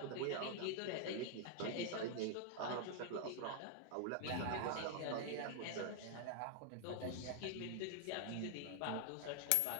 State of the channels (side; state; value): both; different; correlation 0.00